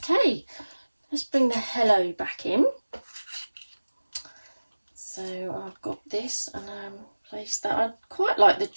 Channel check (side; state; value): both; inverted; correlation -1.00